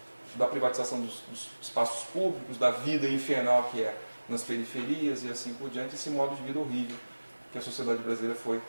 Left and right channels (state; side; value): inverted; both; correlation -1.00